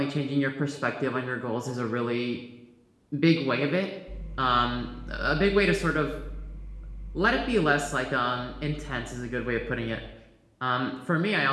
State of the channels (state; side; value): identical; both; correlation 1.00